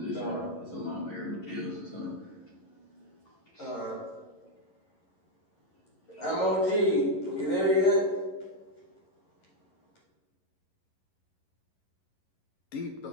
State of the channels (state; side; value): late; right; 11 ms